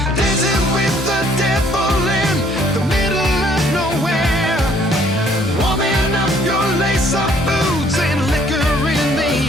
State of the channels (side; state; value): both; normal; correlation 0.62